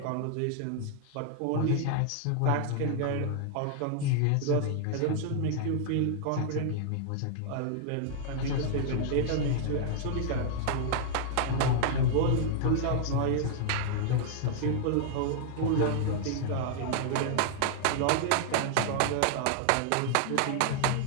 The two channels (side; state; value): both; different; correlation -0.01